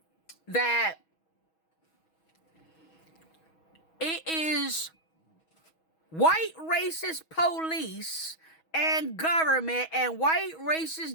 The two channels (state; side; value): late; right; 6.2 ms